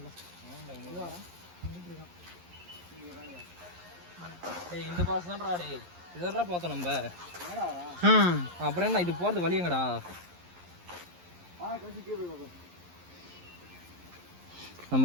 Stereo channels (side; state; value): left; late; 11 ms